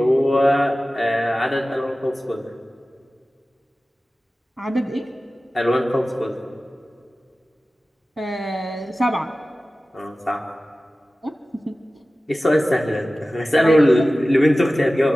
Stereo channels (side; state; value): both; normal; correlation 0.96